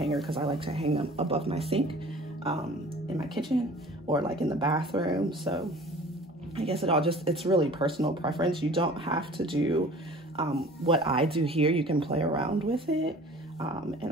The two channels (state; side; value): normal; both; correlation 0.46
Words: because I like to hang them above my sink in my kitchen, or like in the bathroom. So I guess it's really personal preference. You don't have to do what I do here. You can play around with it.